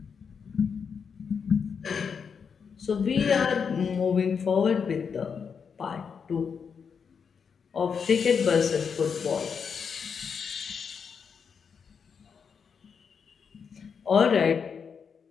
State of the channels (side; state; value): right; quieter; 6.3 dB